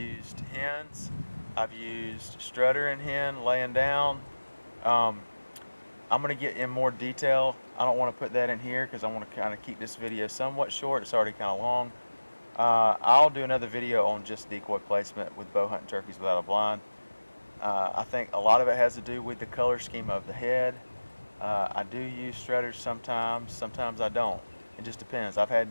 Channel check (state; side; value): inverted; both; correlation -1.00